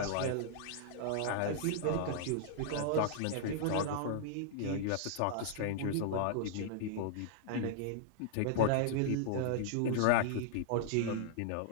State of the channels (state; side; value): different; both; correlation -0.01